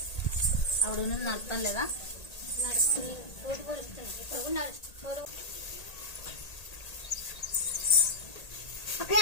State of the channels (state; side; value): late; right; 1.8 ms